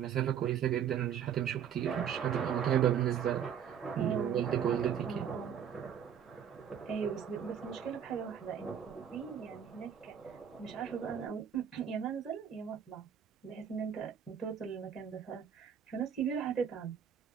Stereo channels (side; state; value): left; quieter; 8.4 dB